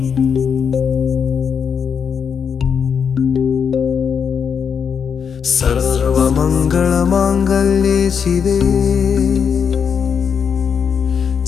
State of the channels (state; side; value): quieter; right; 6.9 dB